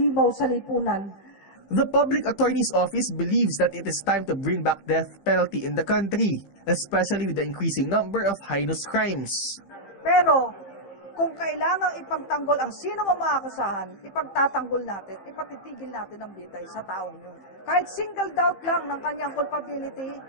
sa lipunan. The Public Attorney's Office believes that it is time to bring back death penalty in the country, especially with the increasing number of heinous crimes. Pero, kung kailangang ipagtanggol ang sino mang maakusahan, ipagtatanggol natin, ipatitigil natin ang bitay sa taong yun. Kahit single doubt lang ng kanyang culpability,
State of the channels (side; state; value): right; late; 15 ms